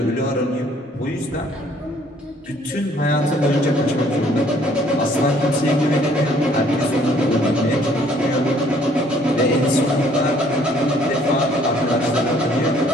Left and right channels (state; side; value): normal; both; correlation 0.61